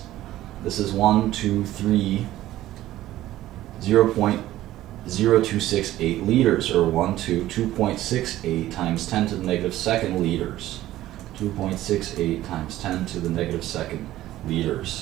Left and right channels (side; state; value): left; quieter; 14.6 dB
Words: This is 0.0268 liters, or 2.68 times 10 to the negative second liters. 2.68 times 10 to the negative second